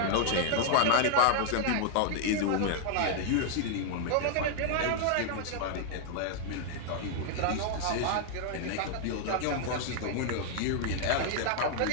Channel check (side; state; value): both; different; correlation 0.00